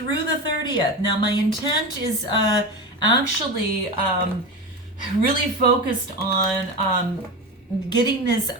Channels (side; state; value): both; normal; correlation 0.23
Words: the 30th. Now my intent is actually really focused on getting this